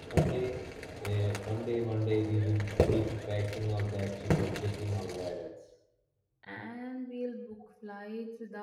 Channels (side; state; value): both; identical; correlation 1.00